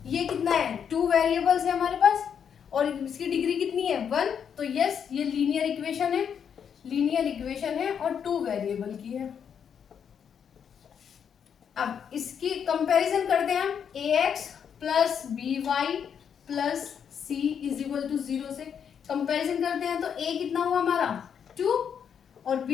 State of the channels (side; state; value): right; quieter; 7.7 dB